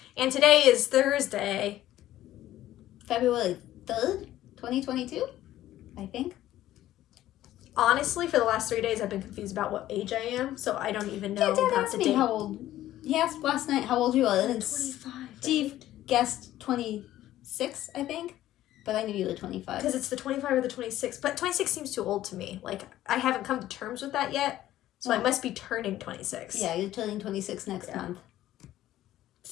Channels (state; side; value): quieter; right; 13.9 dB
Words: and today is Thursday. February 3rd, 2022, I think. Honestly, for the last 3 days, I've been confused about what age I am. So I don't even know Dad about asked the me date. how old. He asked last night how old you were. And 25. Steve guessed 26, I think. But I knew you were 25. Because it's the 25 or the 26. But 26 seems too old to me. Like, I haven't come to terms with that yet. So I must be turning 26. Yeah, you're turning 26 next month.